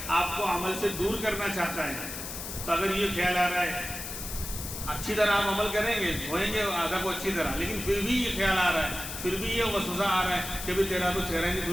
آپ کو عمل سے دور کرنا چاہتا ہے۔ تو اگر یہ خیال آ رہا ہے، اچھی طرح آپ عمل کریں گے، دھوئیں گے اعضاء کو اچھی طرح، لیکن پھر بھی یہ خیال آ رہا ہے، پھر بھی یہ وسوسہ آ رہا ہے کہ تیرا تو چہرہ نہیں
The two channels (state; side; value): noise; left; hiss, 8 dB below the sound